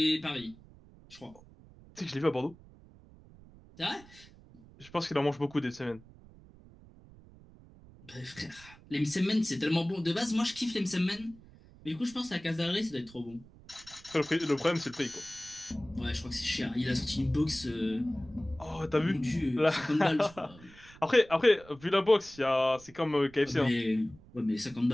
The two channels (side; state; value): right; noise; rumble, 22 dB below the sound